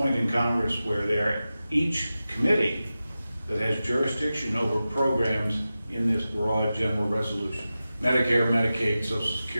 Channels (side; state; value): both; inverted; correlation -0.94